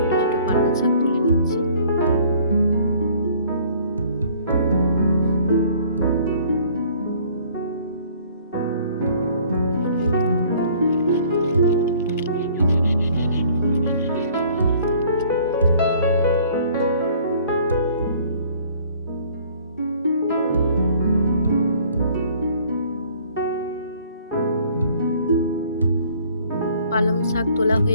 ছোট পালং শাক তুলে নিচ্ছি। পালং শাক তোলা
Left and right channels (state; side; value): inverted; both; correlation -0.56